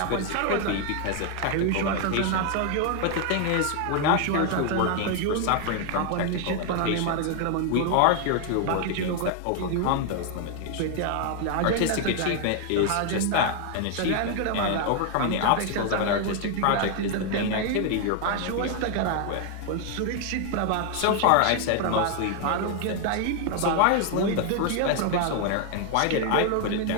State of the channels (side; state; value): both; different; correlation 0.01